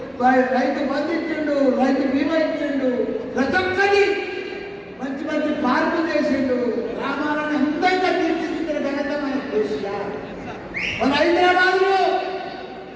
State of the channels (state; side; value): identical; both; correlation 1.00